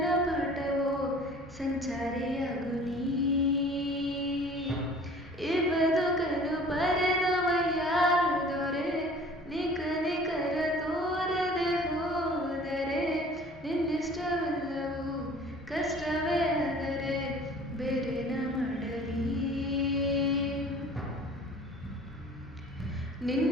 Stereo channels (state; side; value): normal; both; correlation 0.48